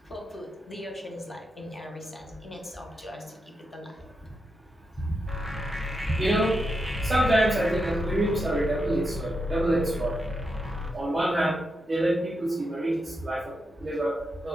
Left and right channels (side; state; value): both; normal; correlation 0.85